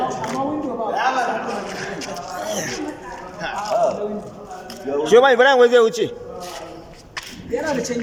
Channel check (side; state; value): both; identical; correlation 1.00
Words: Shi ma Ibrahim wai zai wuce. Yana da